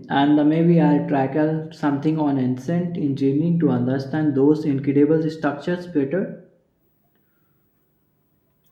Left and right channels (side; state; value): both; identical; correlation 1.00